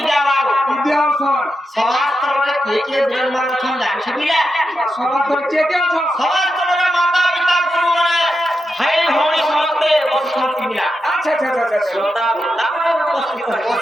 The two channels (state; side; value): normal; both; correlation 0.87